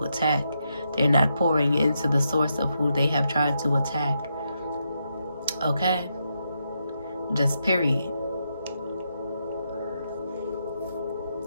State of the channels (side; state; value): both; inverted; correlation -0.82